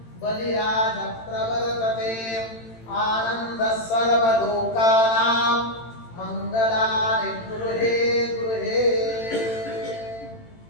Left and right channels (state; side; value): late; right; 18 ms